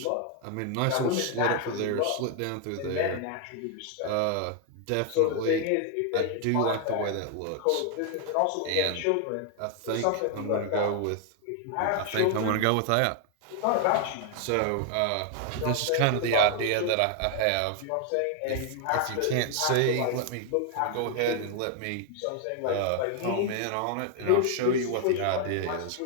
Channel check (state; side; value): different; both; correlation 0.00